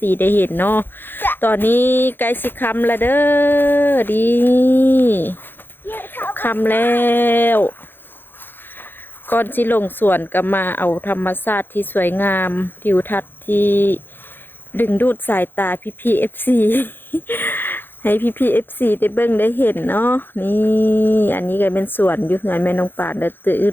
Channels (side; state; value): right; late; 0.099 ms